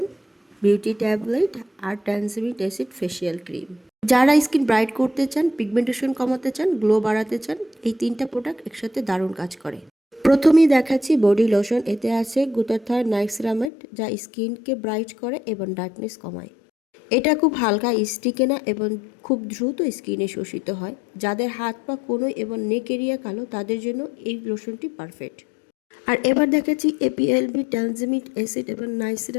beauty tablet আর ট্যানজামিক অ্যাসিড ফেসিয়াল ক্রিম। যারা স্কিন ব্রাইট করতে চান, পিগমেন্টেশন কমাতে চান, গ্লো বাড়াতে চান, এই 3টা প্রোডাক্ট একসাথে দারুণ কাজ করে। প্রথমেই দেখাচ্ছি বডি লোশন। এতে আছে গ্লুটাথিয়ন নাইসিনামাইড, যা স্কিনকে ব্রাইট করে এবং ডার্কনেস কমায়। এটা খুব হালকা, স্টিকে না এবং খুব দ্রুত স্কিনে শোষিত হয়। যাদের হাত পা কোনোই এবং নেক এরিয়া কালো, তাদের জন্য এই লোশনটি পারফেক্ট। আর এবার দেখাচ্ছি এপিএলবি ট্যানজামিক অ্যাসিড এবং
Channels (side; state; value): right; drops out; at 13.7 s